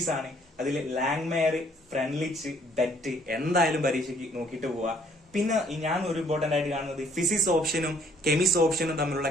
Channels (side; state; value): both; normal; correlation 0.63